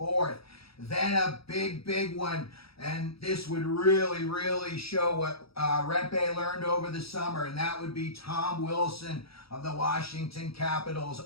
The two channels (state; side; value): late; right; 0.76 ms